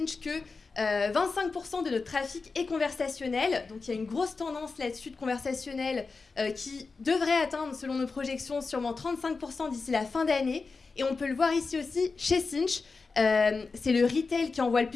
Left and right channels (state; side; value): quieter; right; 4.3 dB